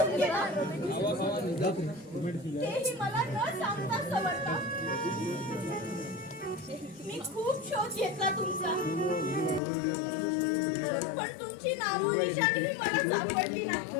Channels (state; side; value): drops out; right; at 9.6 s